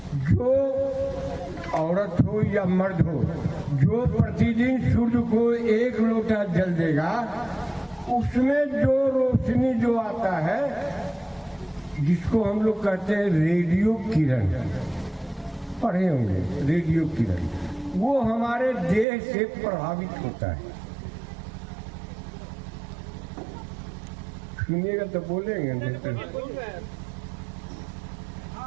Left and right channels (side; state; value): left; drops out; at 19.1 s